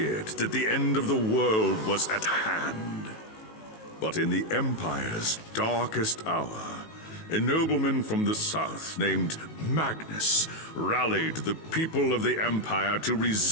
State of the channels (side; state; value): right; late; 19 ms